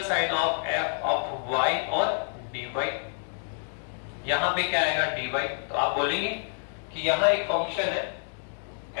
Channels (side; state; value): right; silent; digital silence